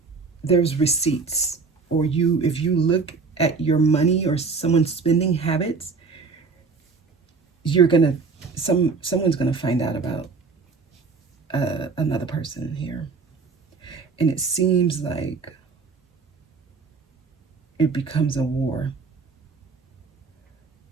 there's receipts, or if you look at your money or someone's spending habits, someone's gonna find out about another person here. And it seems like it becomes a war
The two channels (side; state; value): left; quieter; 4.7 dB